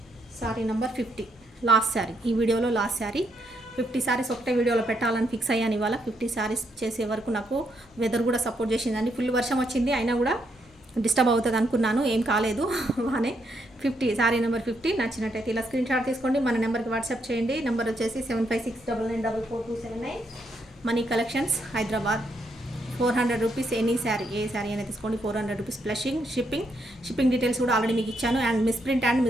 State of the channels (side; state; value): both; normal; correlation 0.77